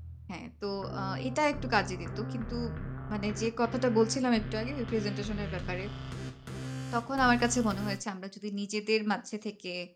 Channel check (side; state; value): both; identical; correlation 1.00